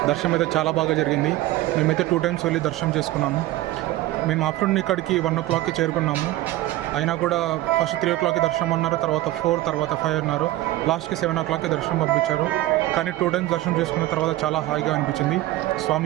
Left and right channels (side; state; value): left; quieter; 16.2 dB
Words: దర్శనం అయితే చాలా బాగా జరిగింది. మేమైతే 2 times వెళ్ళి దర్శనం చేసుకున్నాము. మేము ఆఫ్టర్నూన్ ఇక్కడికి 1 o'clockకి చేరుకున్నాము. అయినా కూడా ఫస్ట్ 3 o'clockకి దర్శనం అన్నారు, తర్వాత 4, తర్వాత 5 అన్నారు. లాస్ట్కి 7 o'clockకి దర్శనం పంపించారు. కానీ 2 times దర్శనం చేసుకున్న తర్వాత చాలా హాయిగా అనిపించింది.